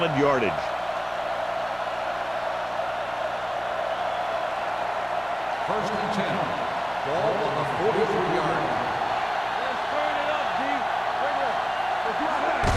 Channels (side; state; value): both; identical; correlation 1.00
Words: yardage. First and 10. Ball on the 43-yard line. Let's turn it up, D. Bring it.